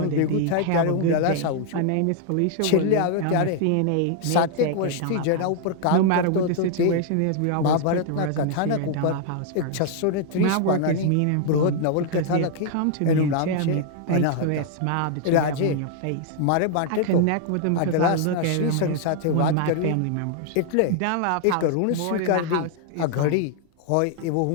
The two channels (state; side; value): different; both; correlation 0.00